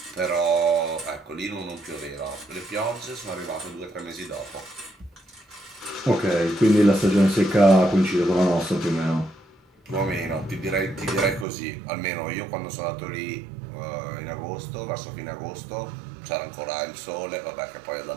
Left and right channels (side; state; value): left; drops out; at 11.5 s